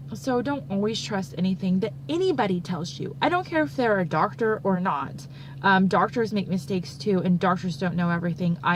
so don't always trust anything that anybody tells you. I don't care if they're a doctor or not. Doctors make mistakes too, and doctors don't know everything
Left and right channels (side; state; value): both; identical; correlation 1.00